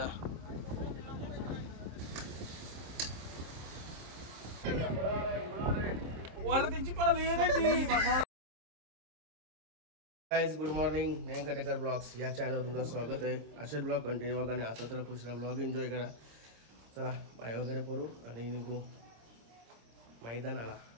गाइस गुड मॉर्निंग नयन कटेकर ब्लॉग्स या चॅनलवर तुमचं स्वागत आहे. असेच ब्लॉग कंटिन्यू बघा आणि आता तर पुढचा ब्लॉग एन्जॉय करा. चला पाय वगैरे पडू आणि निघू मैदानाला.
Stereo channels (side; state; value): left; late; 26 ms